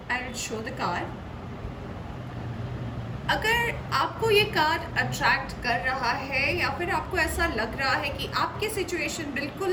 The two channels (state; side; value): identical; both; correlation 1.00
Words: I will show the card. अगर आपको ये कार्ड अट्रैक्ट कर रहा है या फिर आपको ऐसा लग रहा है कि आपकी सिचुएशन